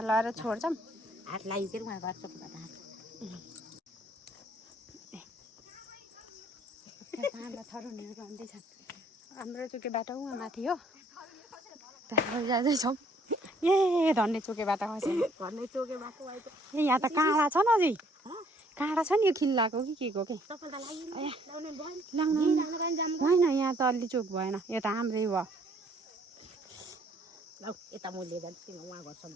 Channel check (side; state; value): both; normal; correlation 0.63